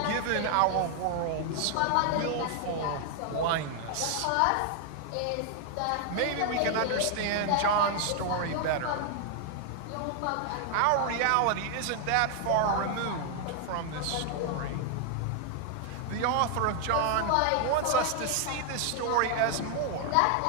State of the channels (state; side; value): different; both; correlation 0.00